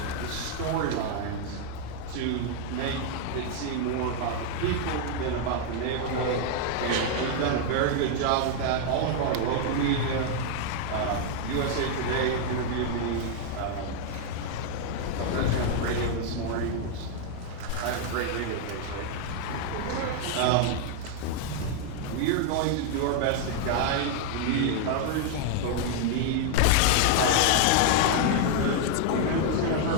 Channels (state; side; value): different; both; correlation 0.00